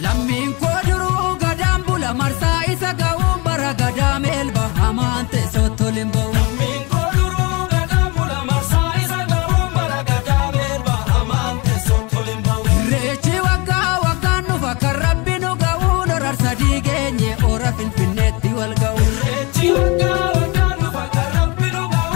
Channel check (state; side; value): quieter; right; 26.9 dB